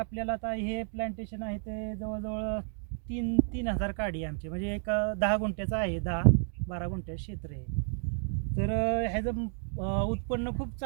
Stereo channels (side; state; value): left; silent; 57 dB below the other